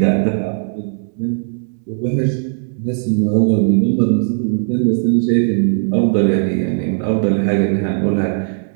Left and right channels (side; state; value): left; silent; 68 dB below the other